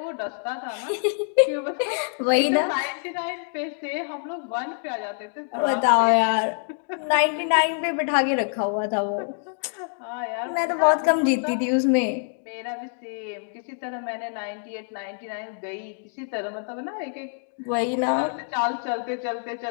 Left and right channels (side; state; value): right; silent; 61 dB below the other